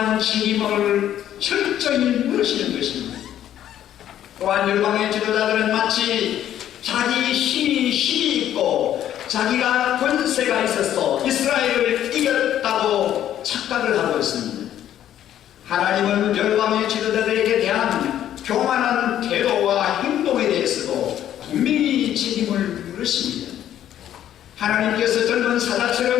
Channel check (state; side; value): quieter; right; 11.3 dB